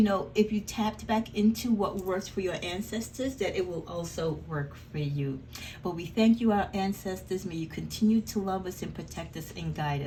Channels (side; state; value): both; identical; correlation 1.00